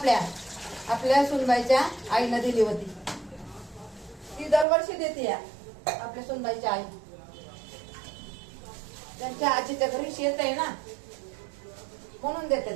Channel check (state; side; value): drops out; left; at 4.7 s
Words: आपल्या सुनबाईच्या आईनं दिली होती. ती दरवर्षी देते या आपल्या सुनबाईच्या आई. त्यांच्या आजीच्या घरी शेत आहे ना, म्हणून देतात